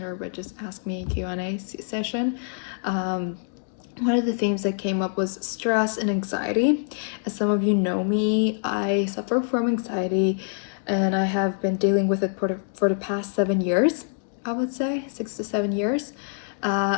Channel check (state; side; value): silent; right; digital silence